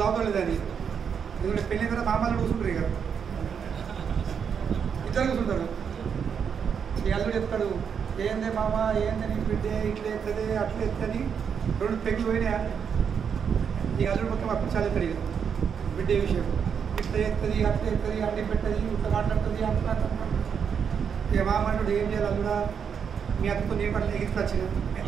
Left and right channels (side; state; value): left; quieter; 7.1 dB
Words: దావుతలేదని. ఎందుకంటే పెళ్ళి కదా మామలు కూర్చుంటారు, ఇక ఇద్దరు కూర్చుంటారు. ఈ అల్లుడు చెప్తాడు, ఏందే మామ ఏందని బిడ్డే ఇట్లా ఎత్తది అట్లా ఎత్తని, రెండు పెగ్గులు పోయినాయా. ఈ అల్లుడు మొత్తం అప్పుడు చాలా ఎత్తాడు, ఇక బిడ్డే విషయం ఇట్లా ఎత్తది అట్లా ఎత్తది అడ్డి పెట్టది ఇట్లా మాట్లాడుతుంది అట్లా. ఇక మామ అంటాడు, ఏం చేయాలి అల్లుడా, మీ అత్తతో నేను పట్ల ఎగించుకొచ్చిన,